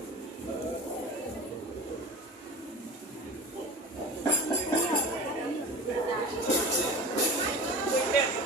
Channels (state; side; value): normal; both; correlation 0.36